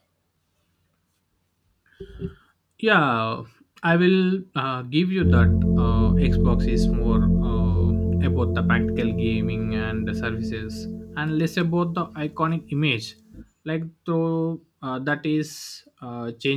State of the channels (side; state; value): both; identical; correlation 1.00